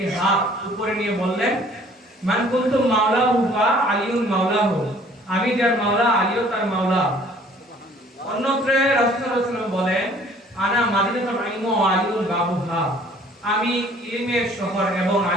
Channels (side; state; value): both; normal; correlation 0.55